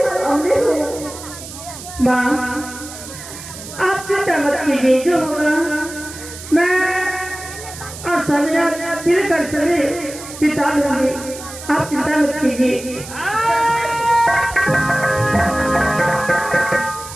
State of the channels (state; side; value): noise; right; hiss, 13 dB below the sound